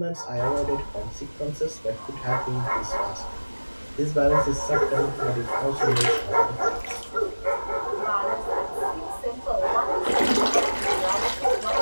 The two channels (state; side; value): inverted; both; correlation -1.00